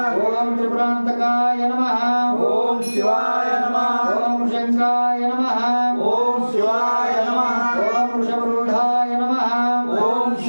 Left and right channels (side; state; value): both; inverted; correlation -1.00